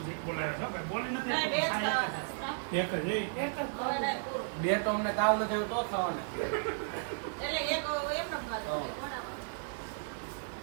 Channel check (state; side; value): silent; left; digital silence